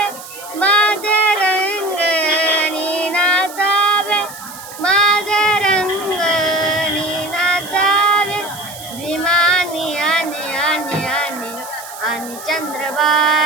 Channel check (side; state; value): right; noise; hiss, 15 dB below the sound